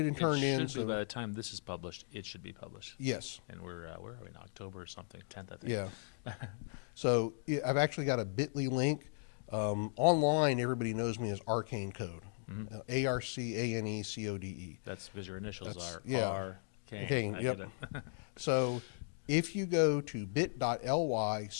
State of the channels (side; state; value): right; silent; digital silence